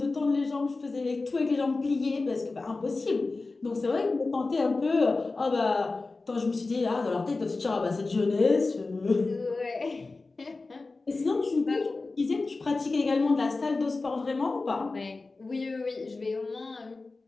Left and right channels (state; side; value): quieter; right; 3.6 dB